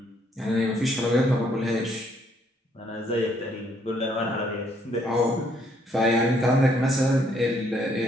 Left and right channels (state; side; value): normal; both; correlation 0.68